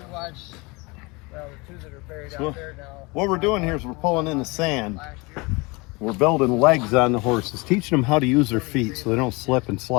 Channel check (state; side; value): quieter; right; 26.0 dB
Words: watch, well, the two that are buried So, out there now. what we're doing here is we're pulling in the sand. Last year. We're building legs on the horses, teaching them how to use their feet so they don't slip and